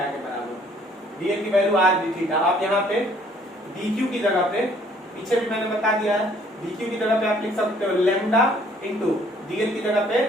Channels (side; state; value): both; normal; correlation 0.60